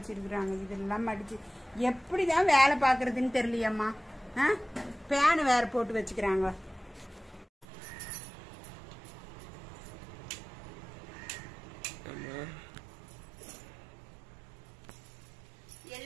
இதெல்லாம் மடிச்சு எப்படிதான் வேலை பார்க்கறதுன்னு தெரியலையம்மா. பேனு வேற போட்டு வச்சுக்கிறாங்க.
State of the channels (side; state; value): left; drops out; at 7.7 s